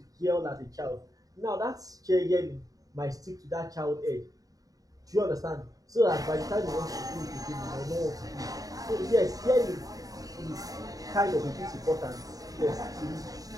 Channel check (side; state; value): left; late; 0.18 ms